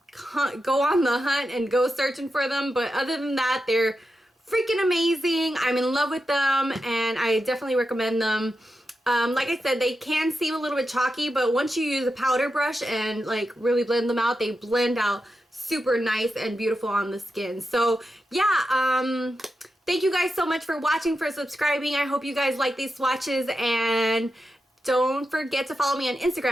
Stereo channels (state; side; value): normal; both; correlation 0.89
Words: go on the hunt and go searching for them. But other than that, they're freaking amazing. I'm in love with them, and I definitely recommend them. Like I said, they can seem a little bit chalky, but once you use a powder brush and like really blend them out, they blend out super nice and beautiful on the skin. So yeah, thank you guys so much for watching, for subscribing. I hope you guys like these swatches, and don't forget to follow me on